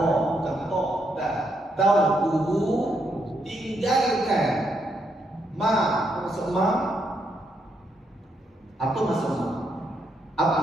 tinggalkan Ma, apa maksud ma? Apa maksud ma? Apa?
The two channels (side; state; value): both; normal; correlation 0.77